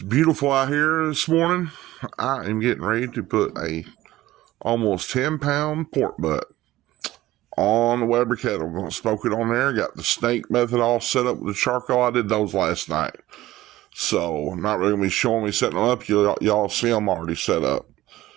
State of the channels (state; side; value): quieter; left; 16.1 dB